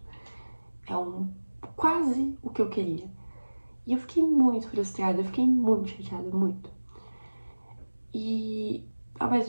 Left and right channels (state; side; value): inverted; both; correlation -1.00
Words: É quase o que eu queria. E eu fiquei muito frustrada, eu fiquei muito chateada, muito. E ao